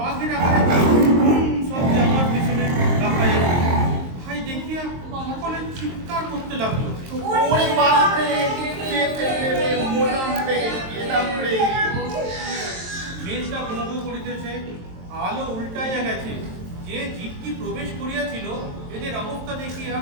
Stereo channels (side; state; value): left; late; 23 ms